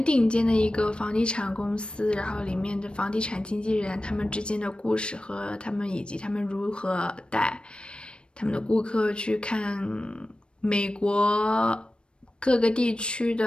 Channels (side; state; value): right; late; 0.056 ms